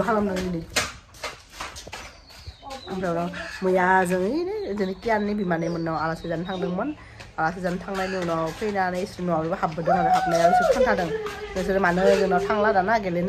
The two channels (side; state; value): both; identical; correlation 1.00